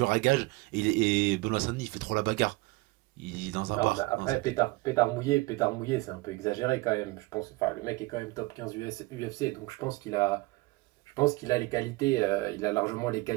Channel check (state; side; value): quieter; left; 22.5 dB